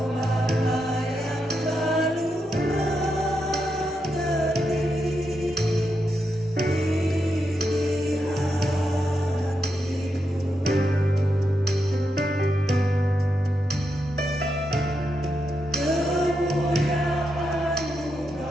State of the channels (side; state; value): both; normal; correlation 0.84